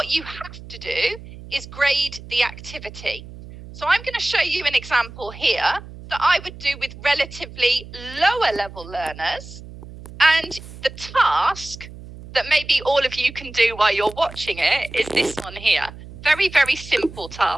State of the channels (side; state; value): right; noise; hum, 15 dB below the sound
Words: you have to do is grade the activity. So I'm going to show you an example here that I would do with relatively lower level learners. And the task that maybe all of you can do while you're watching it is this one here. Very, very simple